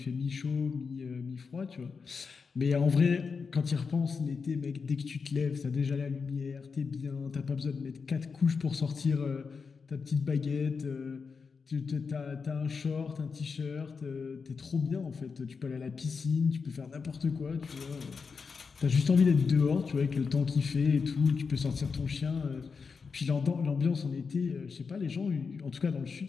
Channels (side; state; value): right; quieter; 5.2 dB